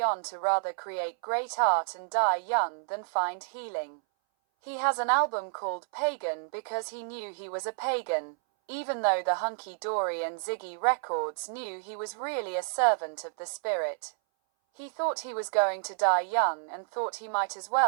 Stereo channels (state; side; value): silent; left; 58 dB below the other